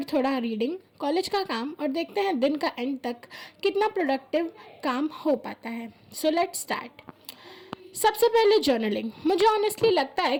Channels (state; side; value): identical; both; correlation 1.00